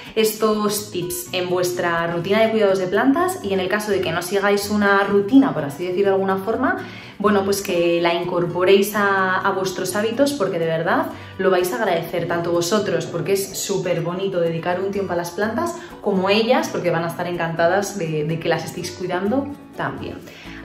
estos tips en vuestra rutina de cuidados de plantas, y en el caso de que no sigáis una rutina, por así decirlo de alguna forma, bueno, pues que la incorporéis a vuestros hábitos, porque de verdad lo vais a agradecer, tanto vosotros, porque es súper bonito dedicar un tiempo a las plantas, como ellas, porque van a estar encantadas de que las estéis cuidando también.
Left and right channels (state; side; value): identical; both; correlation 1.00